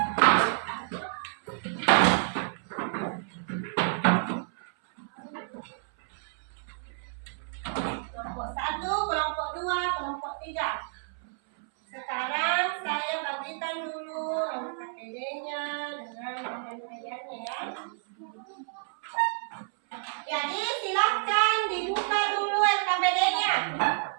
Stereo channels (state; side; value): silent; left; 58 dB below the other